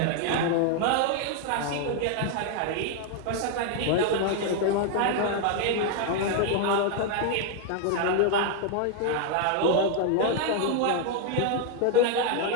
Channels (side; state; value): both; different; correlation 0.00